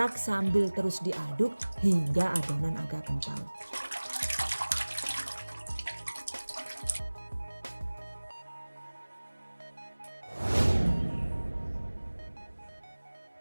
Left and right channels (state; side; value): inverted; both; correlation -1.00